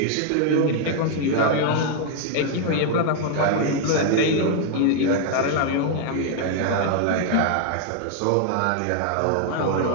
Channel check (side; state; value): both; different; correlation 0.00